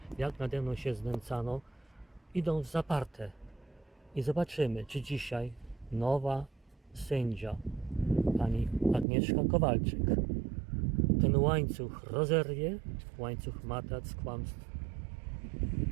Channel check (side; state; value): left; drops out; at 9.1 s